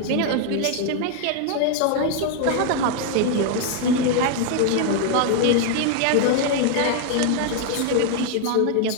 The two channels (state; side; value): different; both; correlation 0.00